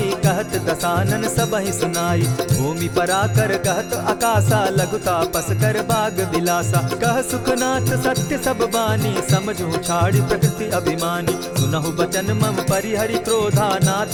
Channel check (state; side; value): noise; right; hum, 26 dB below the sound